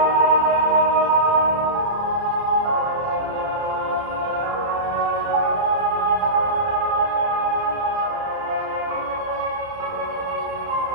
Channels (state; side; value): late; left; 30 ms